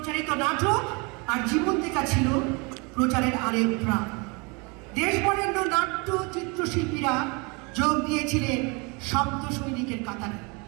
নাটক আর জীবন্তিকা ছিল প্রচারের আরেক প্রাণ। দেশবরেণ্য নাট্য চিত্রশিল্পীরা যোগ দিয়েছিলেন শব্দ সৈনিকের কাতারে।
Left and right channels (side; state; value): left; quieter; 29.8 dB